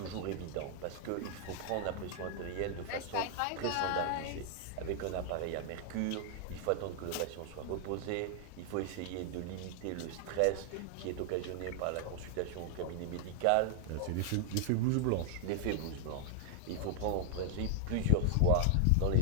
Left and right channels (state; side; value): different; both; correlation 0.00